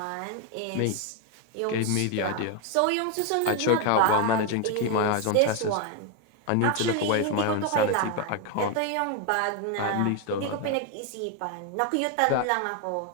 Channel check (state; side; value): different; both; correlation 0.01